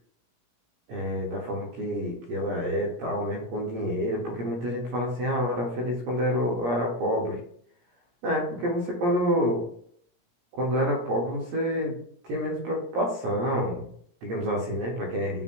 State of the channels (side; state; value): left; late; 17 ms